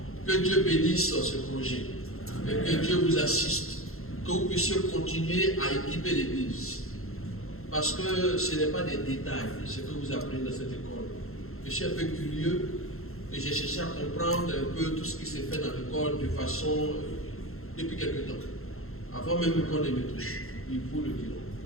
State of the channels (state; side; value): late; right; 0.62 ms